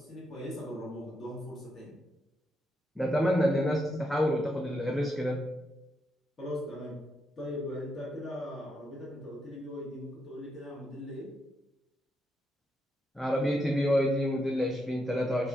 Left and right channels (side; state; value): both; normal; correlation 0.81